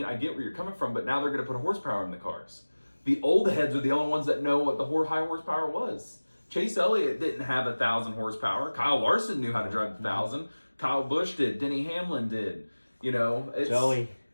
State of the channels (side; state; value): both; inverted; correlation -1.00